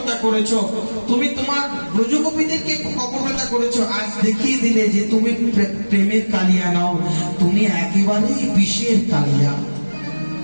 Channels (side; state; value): both; inverted; correlation -1.00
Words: করেছো, তুমি তোমার ব্রজগোপীদেরকে কপটতা করেছো। আজ দেখিয়ে দিলে যে তুমি প্রেমের কালিয়া নাও, তুমি একেবারেই বিষের কালিয়া।